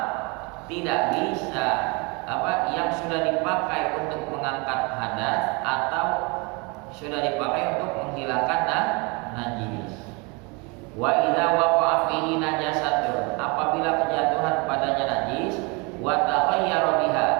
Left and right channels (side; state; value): left; quieter; 29.5 dB